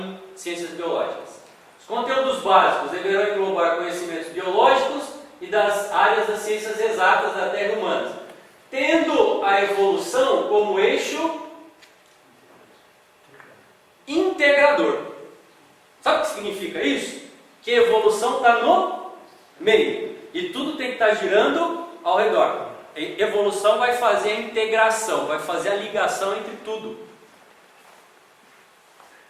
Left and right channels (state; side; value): identical; both; correlation 1.00